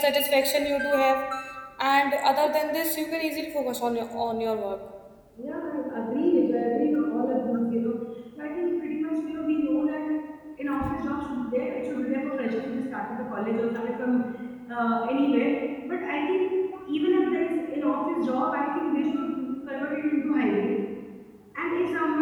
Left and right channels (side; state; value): both; identical; correlation 1.00